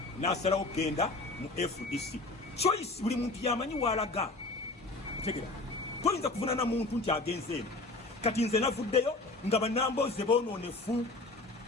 n'asalawo okugenda mu FDC. Choice buli muntu yamanyi walaga otegera toyinza kuvunaana muntu nti agenze eno kati nze navuddeyo nga bannambooze boonoonefu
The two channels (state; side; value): quieter; right; 3.2 dB